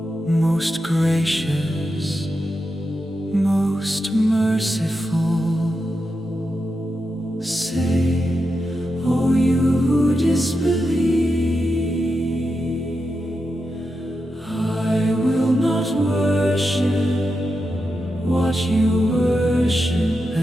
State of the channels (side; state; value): both; normal; correlation 0.88